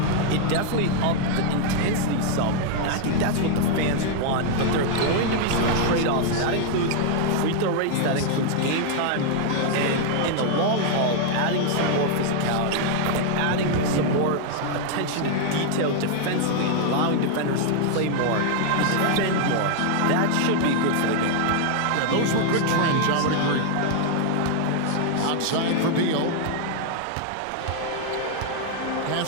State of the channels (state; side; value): different; both; correlation 0.00